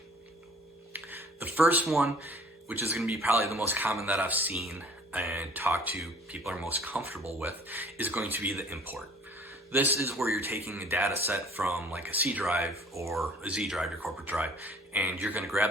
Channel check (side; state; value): both; normal; correlation 0.52